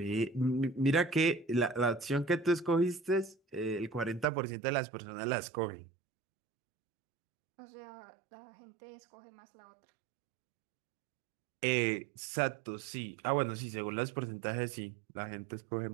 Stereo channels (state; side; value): drops out; left; at 4.2 s